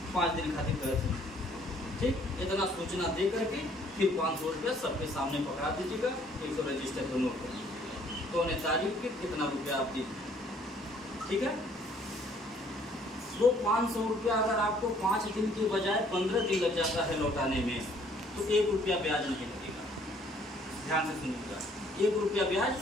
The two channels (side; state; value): both; normal; correlation 0.61